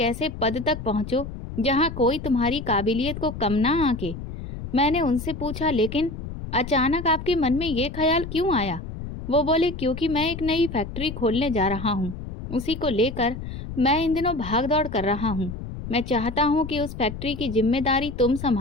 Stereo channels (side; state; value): left; noise; rumble, 9 dB below the sound